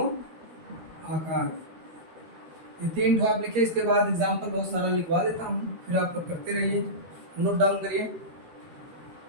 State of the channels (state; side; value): late; left; 13 ms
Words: आकार। ये 3 ठो आप लिखिए, इसके बाद एग्जाम्पल बहुत सारा लिखवा देता हूँ, फिर आप करते रहिए, नोट डाउन करिए।